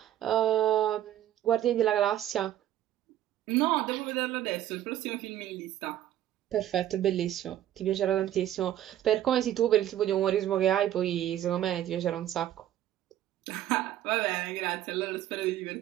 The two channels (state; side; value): quieter; left; 12.2 dB